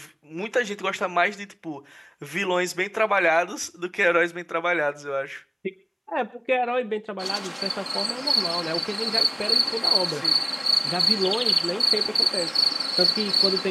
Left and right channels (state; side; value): identical; both; correlation 1.00